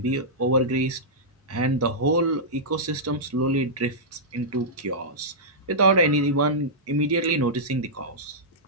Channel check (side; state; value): both; normal; correlation -0.13